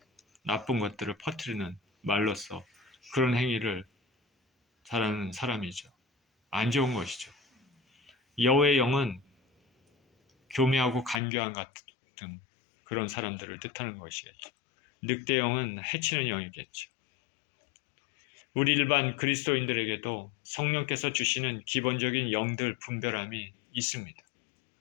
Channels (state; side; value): drops out; right; at 11.2 s